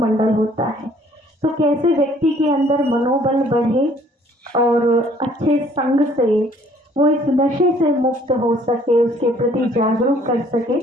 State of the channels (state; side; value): normal; both; correlation 0.59